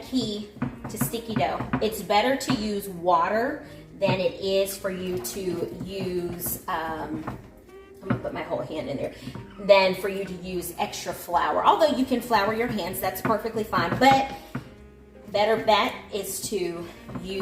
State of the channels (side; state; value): both; identical; correlation 1.00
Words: to sticky dough. It's better to use water than it is for you to use, I'm gonna put my whole hand in there, than for you to use extra flour. Although you can flour your hands, that's perfectly fine. But better bet is to